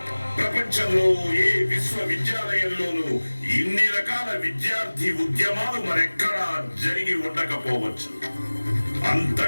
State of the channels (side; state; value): both; inverted; correlation -1.00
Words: ప్రపంచంలో ఏ విశ్వవిద్యాలయంలోనూ ఇన్ని రకాల విద్యార్థి ఉద్యమాలు మరెక్కడా జరిగి ఉండకపోవచ్చు.